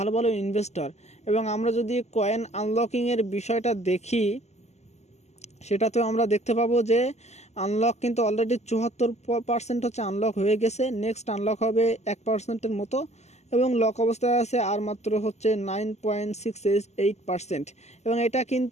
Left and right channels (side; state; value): right; late; 0.33 ms